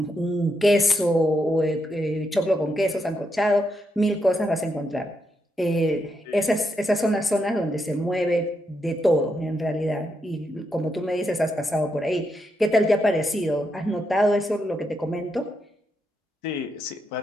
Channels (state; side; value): normal; both; correlation 0.81